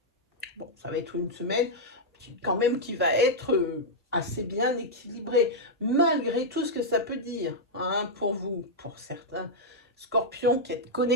Bon, ça va être une semaine quand même qui va être assez bien équilibrée, malgré tout ce que ça peut dire hein, pour vous, pour certains scorpions qui êtes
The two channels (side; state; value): both; normal; correlation -0.05